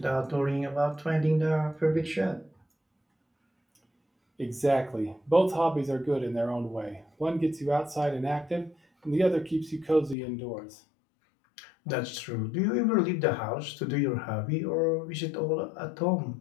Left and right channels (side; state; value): right; drops out; at 10.2 s